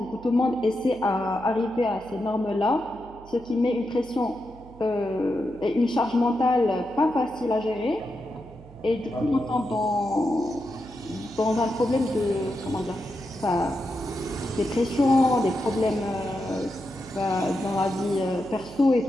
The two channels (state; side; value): noise; right; hum, 20 dB below the sound